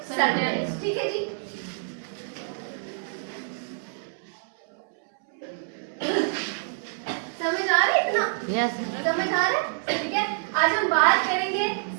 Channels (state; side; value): silent; left; 60 dB below the other